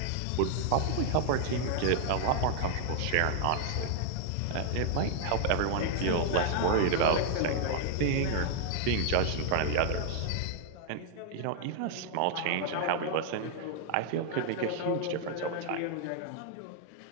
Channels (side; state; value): both; different; correlation 0.00